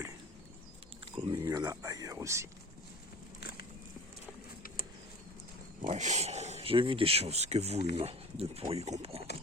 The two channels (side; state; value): both; normal; correlation 0.40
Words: Comme il y en a ailleurs aussi. Bref, j'ai vu des choses que vous, humains, ne pourriez comprendre.